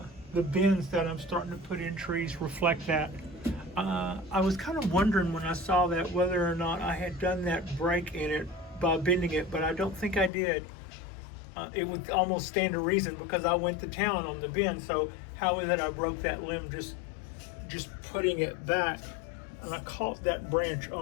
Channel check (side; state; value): right; drops out; at 10.3 s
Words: bins that I'm starting to put in trees reflect that. I was kind of wondering when I saw that whether or not I had done that break in it by bending it, but I don't think I did. It would almost stand to reason because I went to town on the bend. So how is it I broke that limb just putting it back? And I caught that branch